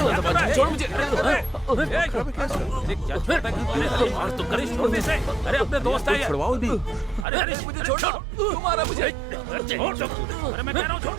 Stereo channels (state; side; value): drops out; left; at 7.2 s